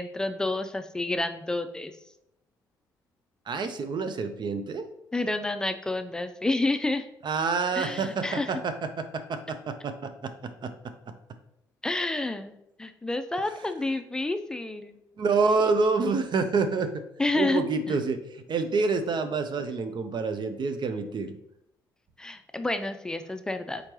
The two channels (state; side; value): normal; both; correlation 0.68